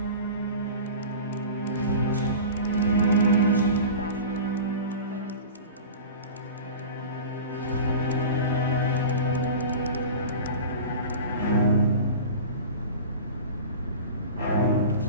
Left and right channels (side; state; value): both; inverted; correlation -0.35